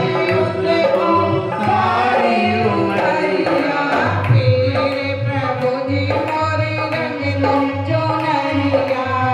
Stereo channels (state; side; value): identical; both; correlation 1.00